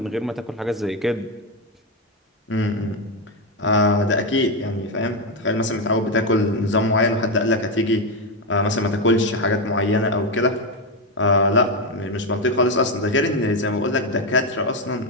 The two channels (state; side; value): normal; both; correlation 0.09